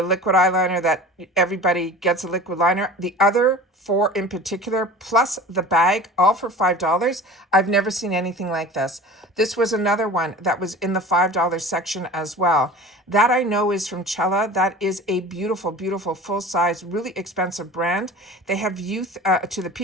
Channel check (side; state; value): both; normal; correlation 0.38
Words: liquid eyeliner that everybody gets a liquid liner, the other 4 in particular, plus the bag, all for $5. I've never seen anything like this. This was another one that was in the $5 section as well. That I know is from Cella. That is a beautiful, beautiful, full-size, really expensive brand. They have Youth to the